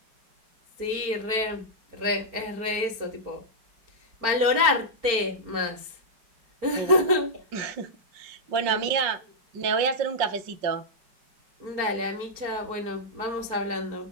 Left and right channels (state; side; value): late; left; 4.4 ms